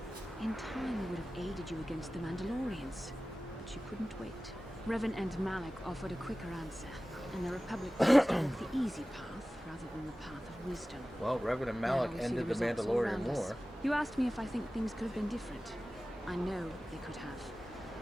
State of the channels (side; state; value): both; normal; correlation 0.96